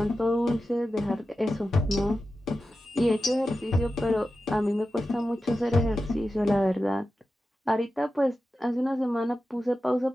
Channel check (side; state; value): both; normal; correlation 0.92